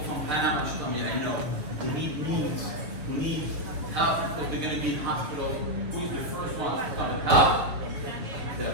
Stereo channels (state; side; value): late; left; 6.3 ms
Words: Panama, she told me, I know, who need needs, who need help because they're going to be in hospital, who is the first one to come and help? The